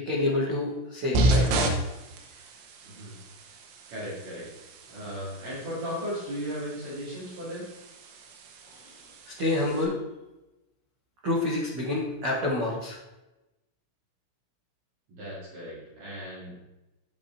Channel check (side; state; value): left; late; 17 ms